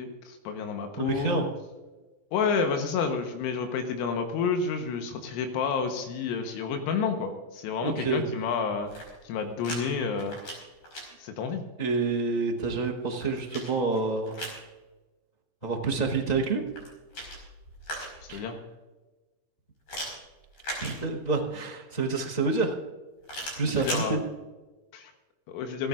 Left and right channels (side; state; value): right; late; 12 ms